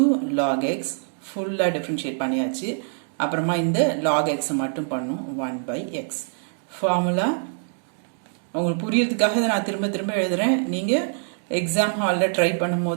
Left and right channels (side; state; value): left; silent; digital silence